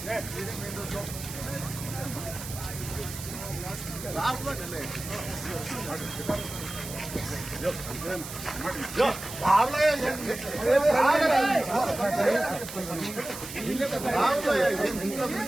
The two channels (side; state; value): right; noise; hiss, 10 dB below the sound